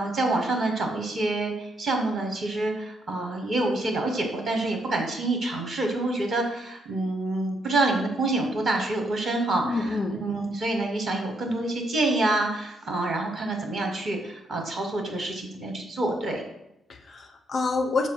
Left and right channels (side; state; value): both; normal; correlation 0.75